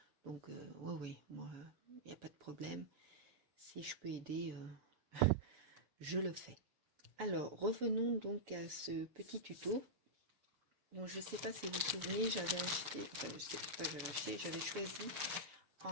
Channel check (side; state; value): left; late; 6.8 ms